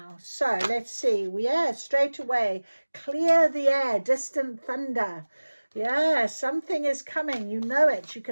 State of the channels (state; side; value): inverted; both; correlation -1.00